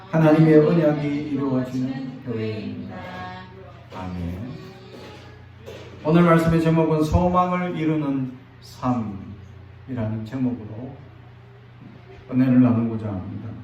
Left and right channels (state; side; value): identical; both; correlation 1.00